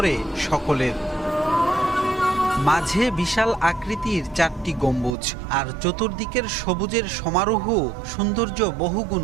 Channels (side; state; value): left; drops out; at 5.2 s